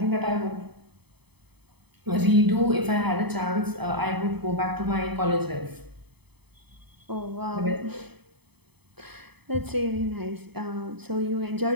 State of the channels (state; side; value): late; left; 0.98 ms